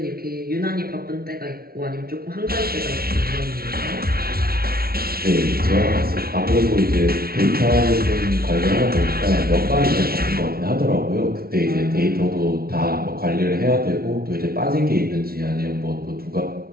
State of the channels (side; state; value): left; late; 0.44 ms